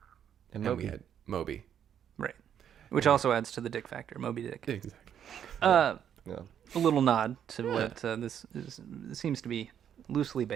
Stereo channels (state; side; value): quieter; left; 9.1 dB